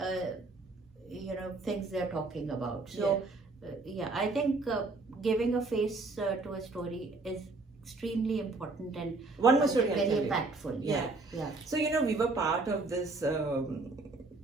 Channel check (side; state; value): left; quieter; 3.5 dB